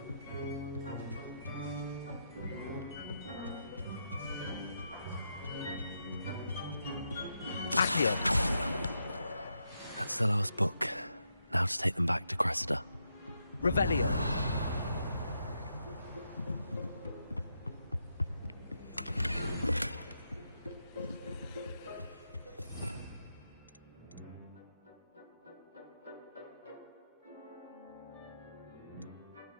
Accio. That's the last book. Now to take them back to Cressida. Revelio.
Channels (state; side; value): inverted; both; correlation -0.82